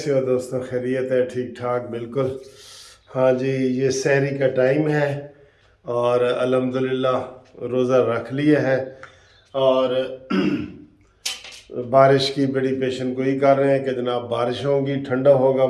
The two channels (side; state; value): both; identical; correlation 1.00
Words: हो दोस्तों? खैरियत है? ठीक ठाक बिल्कुल। हाँ जी, ये सहरी का टाइम है और अल्हम्दुलिल्लाह रोज़ा रख लिया है और बारिश की बड़ी पेशन गोई कर रहे हैं कि जनाब बारिश होगी, ठंडा होगा